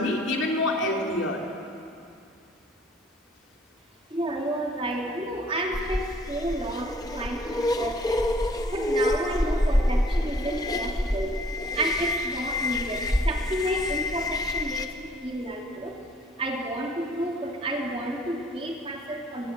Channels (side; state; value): both; normal; correlation 0.58